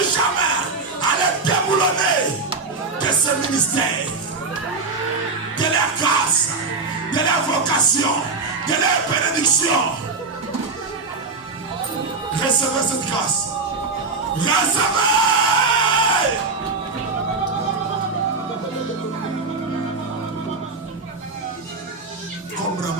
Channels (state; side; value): quieter; left; 4.0 dB